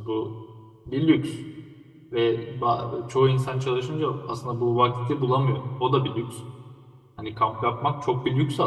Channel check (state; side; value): identical; both; correlation 1.00